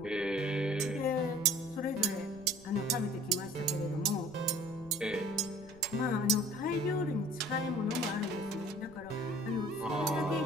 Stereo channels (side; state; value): right; noise; rumble, 22 dB below the sound